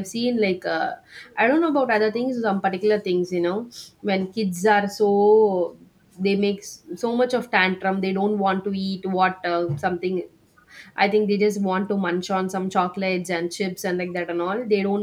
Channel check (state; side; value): identical; both; correlation 1.00